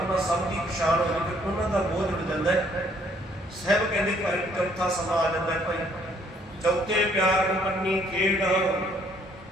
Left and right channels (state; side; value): normal; both; correlation 0.64